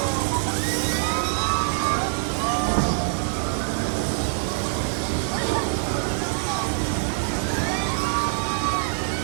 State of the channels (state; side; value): silent; left; 59 dB below the other